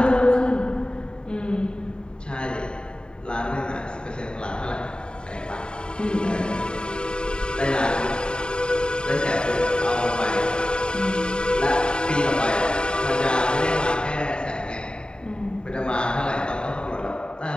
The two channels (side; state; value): right; late; 0.049 ms